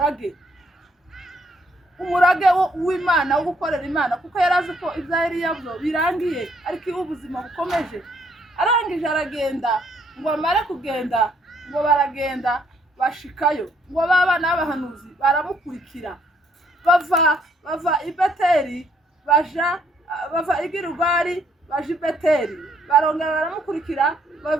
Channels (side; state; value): both; normal; correlation 0.68